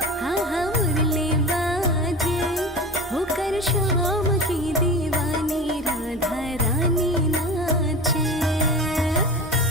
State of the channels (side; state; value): both; normal; correlation 0.32